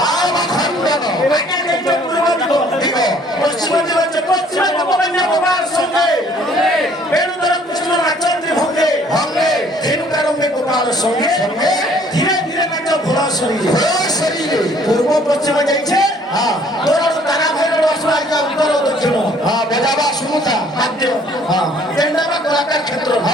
আগে দেখতে পূর্ব দিগ পশ্চিম দিগ হচ্ছে পশ্চিম গোপন্য গোপাল সঙ্গে বেণুধর কৃষ্ণ নাচন্দ্রী ভঙ্গে ধেনুকারঙ্গে গোপাল সঙ্গে ধীরে ধীরে নাচ ঘোড়া শরীরে পূর্ব পশ্চিম যাইছে তোর তারা ভাইর আসবা উত্তর দক্ষিণ বজাবা শুনুতা বাদ্য কেন্দ্রবা কলাকার ক্ষেত্র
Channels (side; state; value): both; normal; correlation 0.59